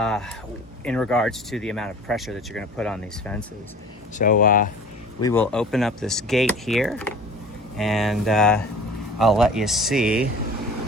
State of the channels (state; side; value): normal; both; correlation 0.42